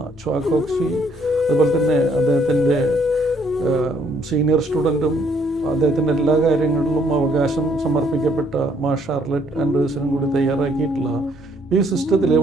ച്വാ കോക്സി, അതുപോലെ തന്നെ അദ്ദേഹത്തിൻ്റെ സീനിയർ സ്റ്റുഡൻറ്റും അദ്ദേഹത്തിൻ്റെ എല്ലാ കാര്യങ്ങളിലും അവകാശം സമർപ്പിക്കപ്പെട്ട മാ ഷാർലറ്റ് ആൻഡേഴ്സണും കൂടി തയ്യാറാക്കിയിട്ടുള്ള ഈ സിസ്റ്റത്തിൽ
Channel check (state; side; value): normal; both; correlation 0.67